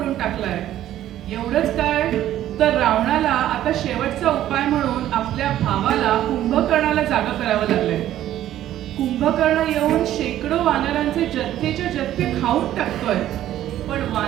टाकलाय. एवढंच काय तर रावणाला आता शेवटचा उपाय म्हणून आपल्या भावाला कुंभकर्णाला जागा करावं लागलंय. कुंभकर्ण येऊन शेकडो वानरांचे जथ्थेच्या जथ्थे खाऊन टाकतोय, पण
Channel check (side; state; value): left; quieter; 12.7 dB